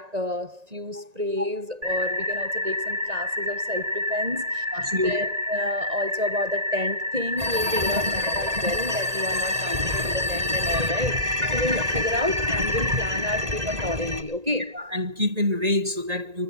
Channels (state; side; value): late; left; 1.9 ms